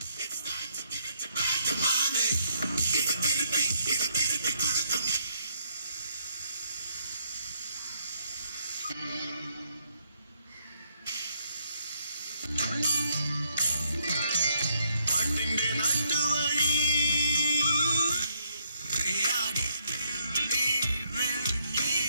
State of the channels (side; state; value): both; inverted; correlation -0.73